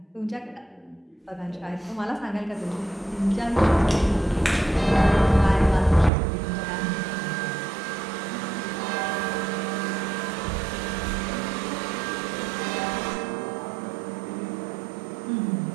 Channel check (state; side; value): drops out; left; at 6.1 s